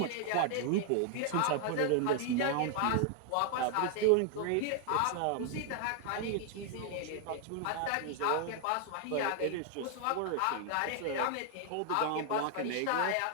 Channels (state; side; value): different; both; correlation 0.00